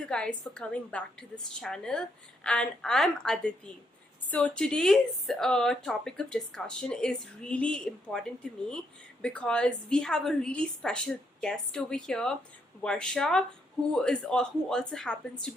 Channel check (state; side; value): normal; both; correlation 0.76